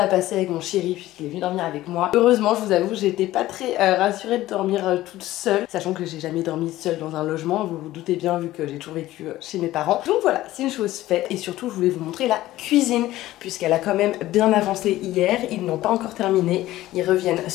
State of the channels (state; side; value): quieter; right; 15.7 dB